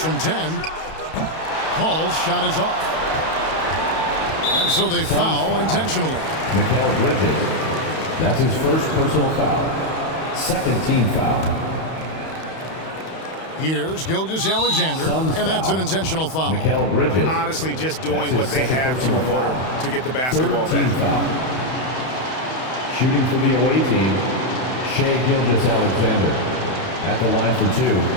10. Calls, shot is off. And so they foul intentionally. Mikal Bridges. That's his first personal foul. Second team foul. Here's Gilgeous-Alexander, and that's an intentional foul. Mikal Bridges. Honestly, just doing what they have to in order to get the basketball Third team back. foul. Shooting for the away team, Shai Gilgeous-Alexander at the line for two.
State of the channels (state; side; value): late; right; 31 ms